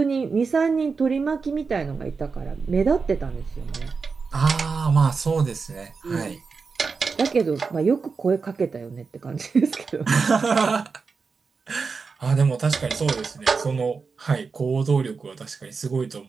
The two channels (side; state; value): left; quieter; 4.9 dB